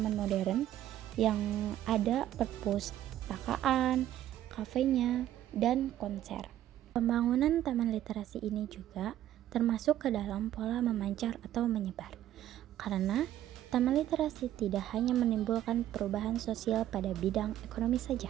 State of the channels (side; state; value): left; quieter; 12.5 dB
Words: modern yang ada perpustakaan, kafenya, dan konser. Pembangunan taman literasi ini juga termasuk ke dalam pola memancar atau menyebar. Karena taman literasi tidak hanya menimbulkan perubahan sosial pada bidang ekonomi